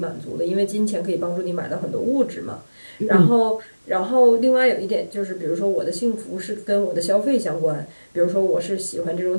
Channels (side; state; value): both; inverted; correlation -1.00